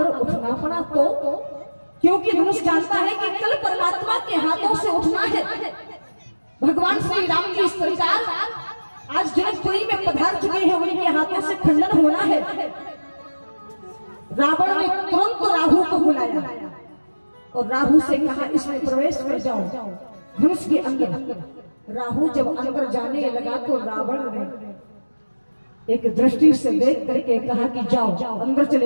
उठना पड़ा तो, क्योंकि धनुष जानता है कि कल परमात्मा के हाथों से उठना है। भगवान श्री राम जी सरकार आज जनकपुरी में पधार चुके हैं, उनके हाथों से खंडन होना है। रावण ने तुरंत राहु को बुलाया और राहु से कहा इसमें प्रवेश कर जाओ धनुष के अंदर। राहु जब अंदर जाने लगा तो रावण ने एक दृष्टि से देख करके कहा कि जाओ अंदर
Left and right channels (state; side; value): inverted; both; correlation -1.00